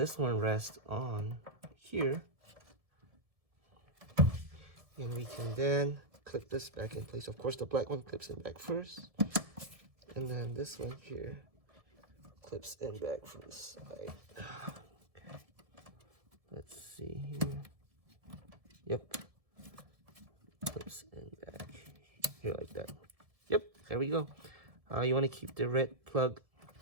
one rests on here. And we can then clip this back in place. Of course, the black one clips in back first. And then this one here clips in back from the side. Okay. Let's see here. Yep. Clips in back here like that. Yep, there we go. You want to keep the red plug.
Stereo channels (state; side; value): late; left; 1.7 ms